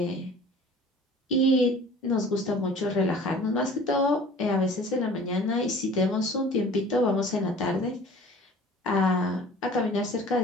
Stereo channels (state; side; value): normal; both; correlation 0.46